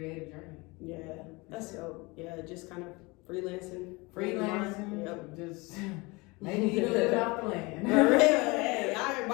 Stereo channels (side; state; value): right; quieter; 25.1 dB